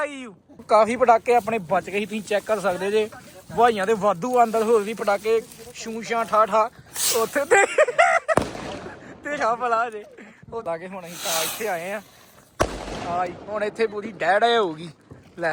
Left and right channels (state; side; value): identical; both; correlation 1.00